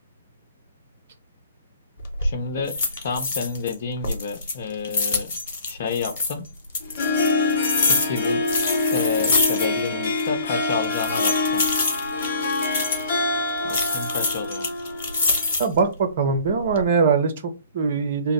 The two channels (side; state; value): both; inverted; correlation -0.50